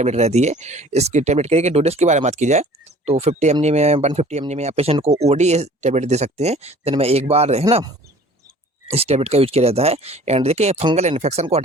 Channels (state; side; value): normal; both; correlation 0.49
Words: रहती है। इसकी टैबलेट के डोजेस के बारे में बात की जाए, तो 50 mg में 150 mg में आप पेशेंट को ओडी टैबलेट दे सकते हैं, दिन में एक बार, है ना, इस टैबलेट का यूज किया जाता है। एंड देखिए फंगल इन्फेक्शन को